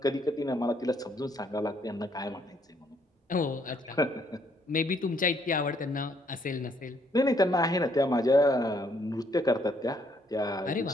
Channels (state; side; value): normal; both; correlation 0.68